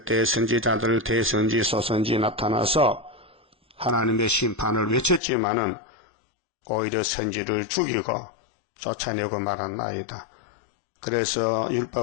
선지자들 대선지 소선지 나타나서 하나님의 심판을 외쳤지만은 오히려 선지를 죽이고 쫓아내고 말았나이다. 그래서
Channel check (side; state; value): right; drops out; at 5.2 s